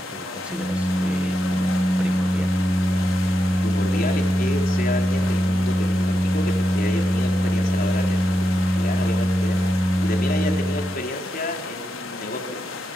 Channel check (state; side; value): normal; both; correlation 0.86